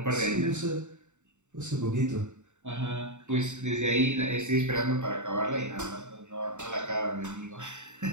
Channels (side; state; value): left; late; 0.84 ms